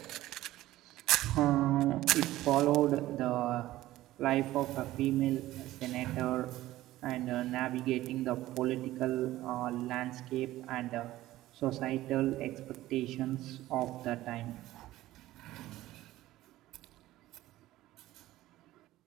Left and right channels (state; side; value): quieter; left; 15.7 dB